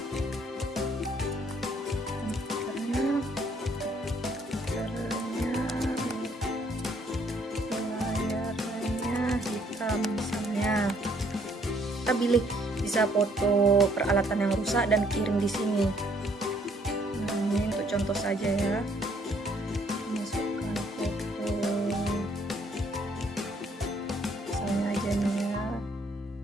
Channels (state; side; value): normal; both; correlation 0.66